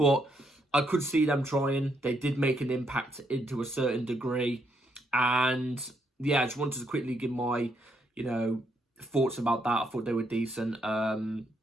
I could see them trying. They did make an impact into a certain degree, and yeah, I just wanted to quickly give my, you know, thoughts about that. I thought they were decent.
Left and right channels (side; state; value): both; normal; correlation 0.75